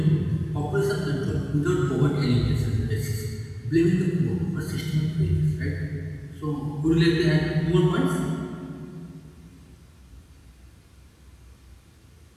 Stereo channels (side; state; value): both; identical; correlation 1.00